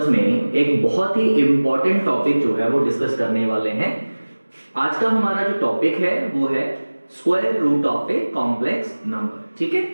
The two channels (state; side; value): inverted; both; correlation -1.00